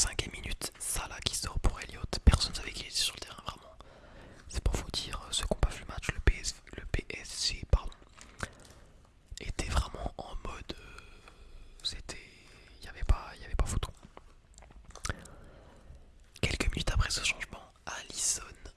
minute, Salah qui sort pour Elliott. Personne ne savait qu'il était sur le terrain vraiment. C'est pour vous dire, ceux qui n'ont pas vu le match, le PSG pardon, était vraiment en mode. C'était. Il n'y avait pas photo. Quelques minutes après ce changement, Alisson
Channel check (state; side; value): identical; both; correlation 1.00